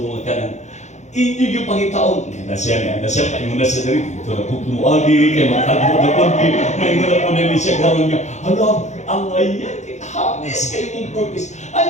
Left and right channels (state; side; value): late; right; 0.34 ms